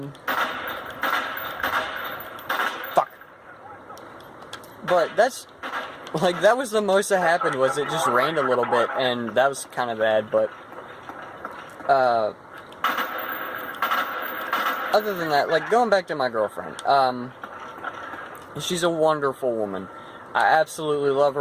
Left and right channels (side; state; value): both; identical; correlation 1.00